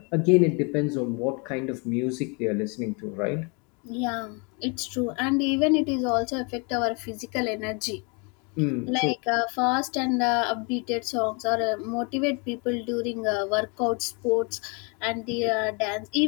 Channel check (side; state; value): right; quieter; 32.7 dB